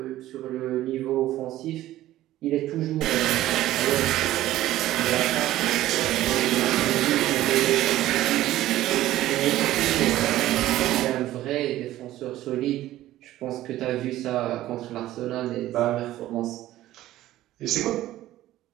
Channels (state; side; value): quieter; left; 14.7 dB